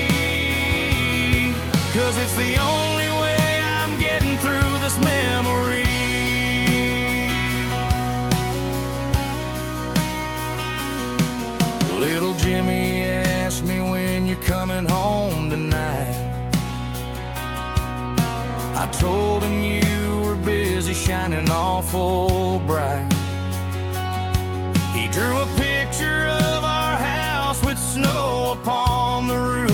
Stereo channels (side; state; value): both; identical; correlation 1.00